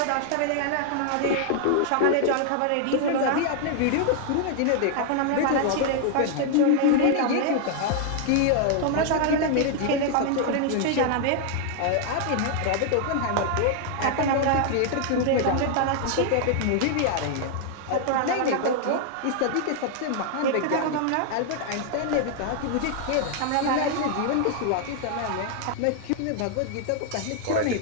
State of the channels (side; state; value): both; different; correlation 0.00